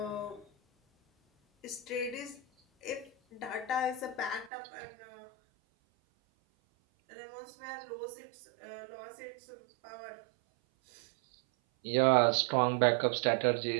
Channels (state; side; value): drops out; left; at 4.5 s